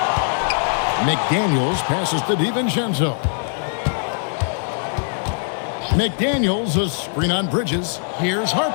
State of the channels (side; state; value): right; silent; digital silence